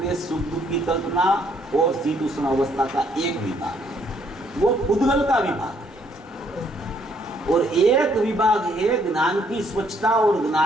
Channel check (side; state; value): both; normal; correlation 0.68